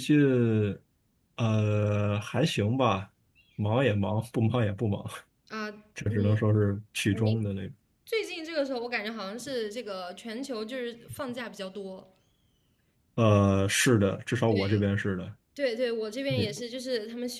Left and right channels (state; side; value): identical; both; correlation 1.00